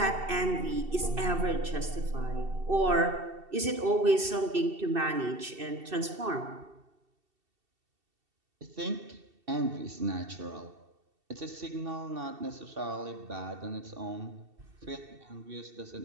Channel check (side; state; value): left; late; 2.7 ms